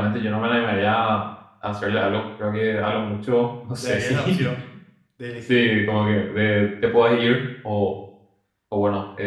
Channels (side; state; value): both; identical; correlation 1.00